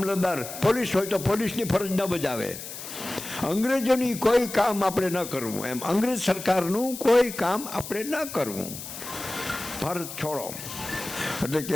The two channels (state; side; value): noise; left; hiss, 10 dB below the sound